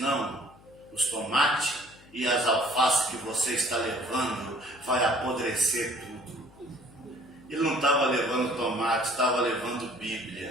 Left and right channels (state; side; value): noise; left; hum, 25 dB below the sound